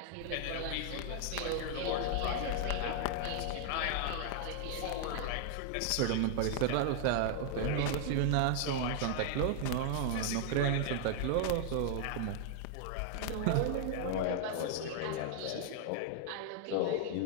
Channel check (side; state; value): both; different; correlation 0.00